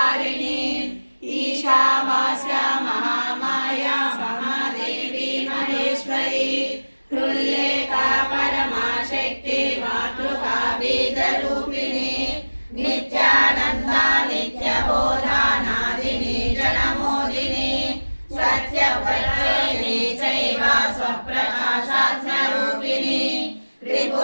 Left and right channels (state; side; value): inverted; both; correlation -1.00